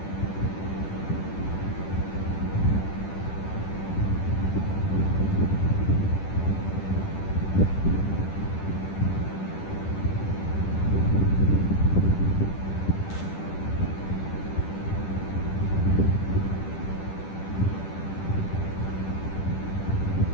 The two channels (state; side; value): late; right; 10 ms